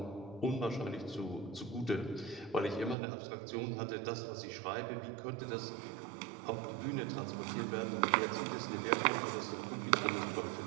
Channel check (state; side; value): drops out; left; at 3.0 s